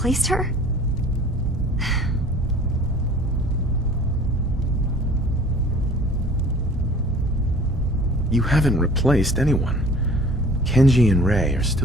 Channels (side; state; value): both; normal; correlation 0.48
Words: her? You haven't replaced anyone. Kenji and Rei are